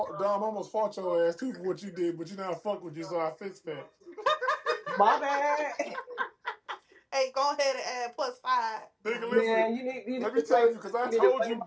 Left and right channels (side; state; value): both; identical; correlation 1.00